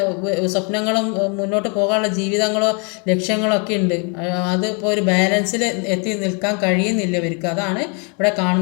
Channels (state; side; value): quieter; right; 35.9 dB